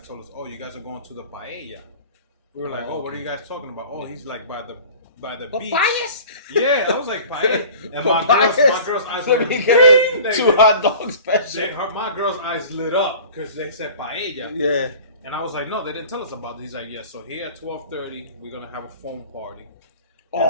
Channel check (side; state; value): both; inverted; correlation -0.42